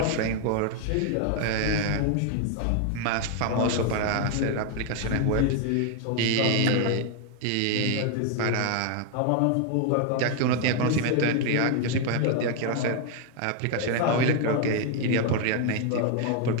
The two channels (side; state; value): both; different; correlation 0.00